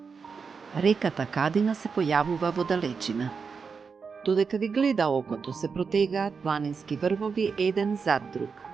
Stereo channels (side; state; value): left; quieter; 5.5 dB